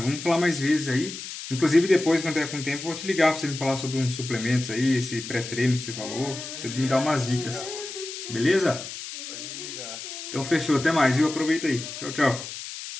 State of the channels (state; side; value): noise; left; hiss, 9 dB below the sound